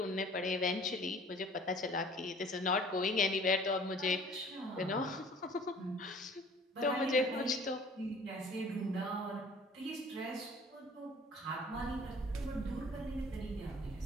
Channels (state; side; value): normal; both; correlation 0.51